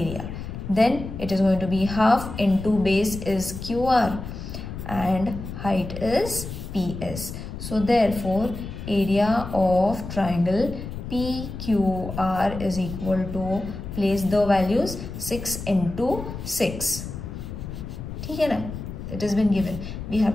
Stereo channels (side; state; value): left; noise; rumble, 9 dB below the sound